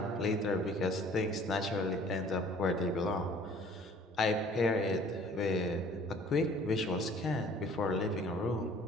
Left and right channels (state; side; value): normal; both; correlation 0.53